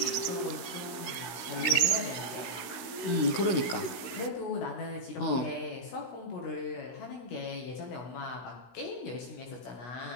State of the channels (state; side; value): late; right; 16 ms